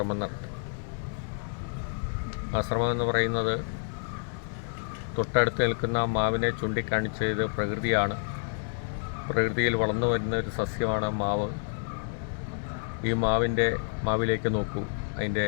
നടത്തി. ആ ശ്രമം എന്ന് പറയുന്നത്, തൊട്ടടുത്ത് നിൽക്കുന്ന മാവിനെ ചൂണ്ടിക്കാണിച്ചത് പ്രകൃതിയാണ്. പ്രകൃതിയിൽ വളർന്നു വരുന്ന ഒരു സസ്യമാണ് മാവ്. ഈ മാവിലേക്ക് നോക്കൂ, അതിൻ്റെ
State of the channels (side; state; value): right; silent; digital silence